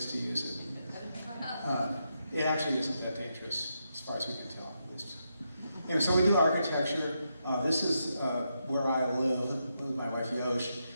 to use it. It actually isn't that dangerous. as far as we can tell, at least. So we do architecture. This is where I live with my wife Yosh,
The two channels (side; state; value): both; inverted; correlation -0.83